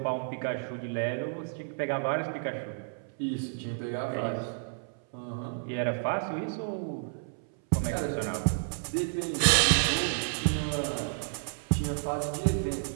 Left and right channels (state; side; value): silent; left; 57 dB below the other